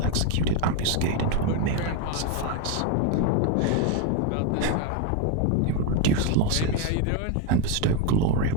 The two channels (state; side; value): different; both; correlation 0.02